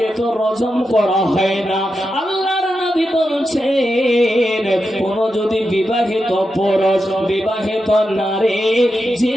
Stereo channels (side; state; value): both; normal; correlation 0.88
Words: তো রজম করা হয় না। আল্লাহর নবী বলছেন কোন যদি বিবাহিত পুরুষ বিবাহিত নারী